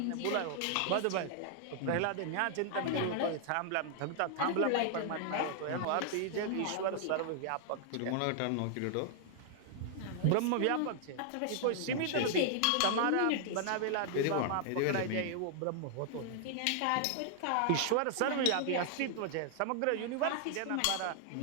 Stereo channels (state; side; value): different; both; correlation 0.00